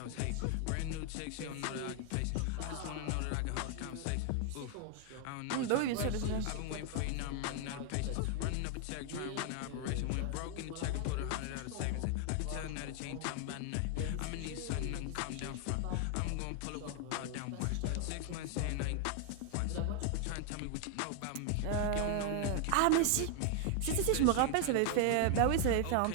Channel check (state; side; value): different; both; correlation 0.00